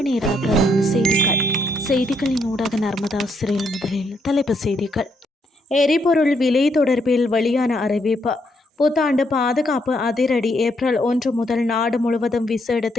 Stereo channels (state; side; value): normal; both; correlation 0.74